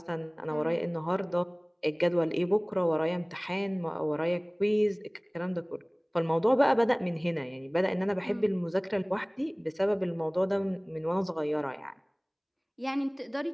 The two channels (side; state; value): both; identical; correlation 1.00